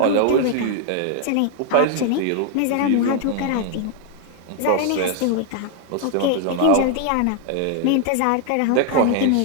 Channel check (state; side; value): different; both; correlation 0.00